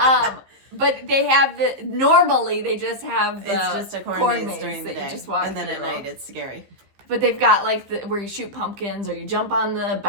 But they have normally they just have the it's just a corn maze during the day. You just walk and then through. at night it's scary. But they've got like where you shoot pumpkins or you jump on the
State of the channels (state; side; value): late; left; 15 ms